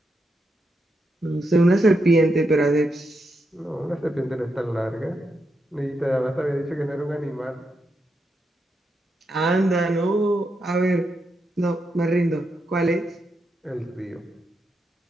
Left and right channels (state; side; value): normal; both; correlation 0.83